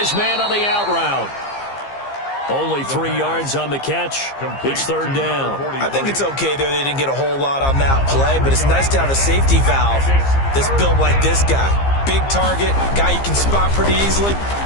man on the out route. Only 3 yards on the catch. It's third down. I think it's okay there. They didn't get a whole lot on that play, but it's nice to have a safety valve that's built like this guy. Big target, guy you can spot pretty easily.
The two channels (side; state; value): right; late; 15 ms